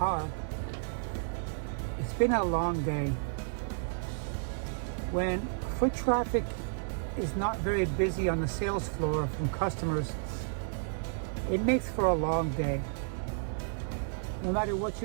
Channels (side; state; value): left; silent; digital silence